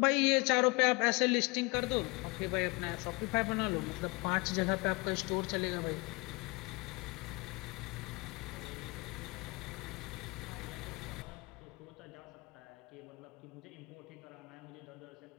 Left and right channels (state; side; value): quieter; right; 26.6 dB